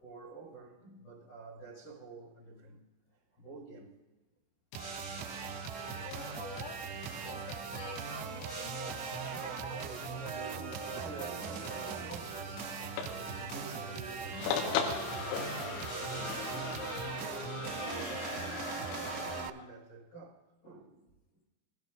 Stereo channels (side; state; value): right; late; 24 ms